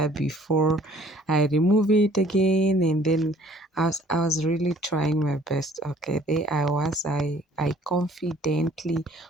before I remove it again, and then I was really trying my best. Okay, there I was. I confidently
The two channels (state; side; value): normal; both; correlation 0.55